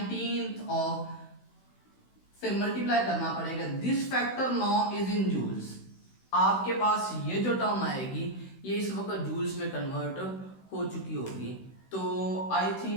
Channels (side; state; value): right; late; 16 ms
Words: of से मल्टीप्लाई करना पड़ेगा। This factor now is in joules. आपके पास ये जो टर्म आएगी ये इस वक्त जूल्स में कन्वर्ट हो चुकी होगी। तो I